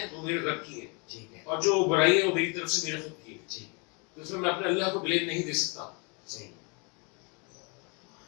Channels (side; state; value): right; quieter; 32.6 dB